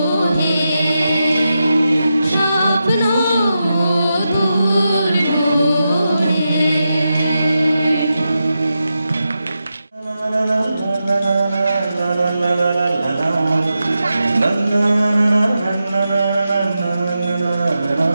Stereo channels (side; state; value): both; inverted; correlation -0.88